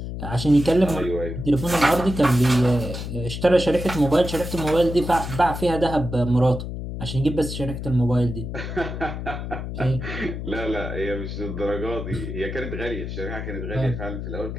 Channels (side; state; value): left; noise; hum, 6 dB below the sound